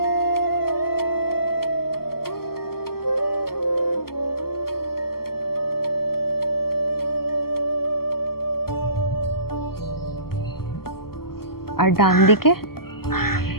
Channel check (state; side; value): late; right; 0.94 ms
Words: আর ডান দিকে